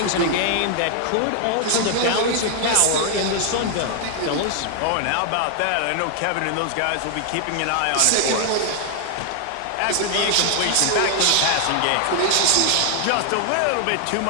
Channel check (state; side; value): different; both; correlation 0.00